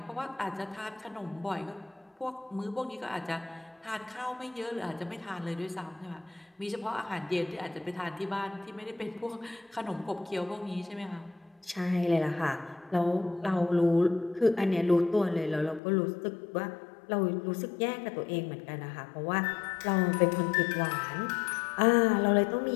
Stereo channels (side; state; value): right; drops out; at 15.8 s